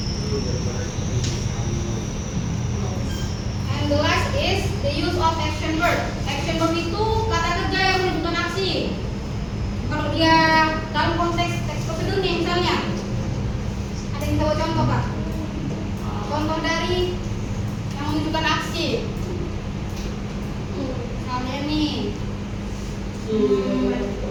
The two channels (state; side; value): identical; both; correlation 1.00